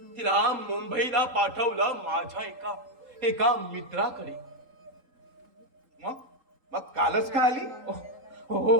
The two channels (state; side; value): late; left; 3.8 ms